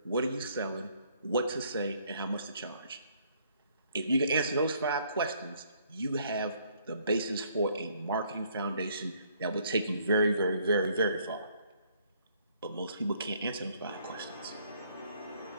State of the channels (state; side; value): inverted; both; correlation -0.65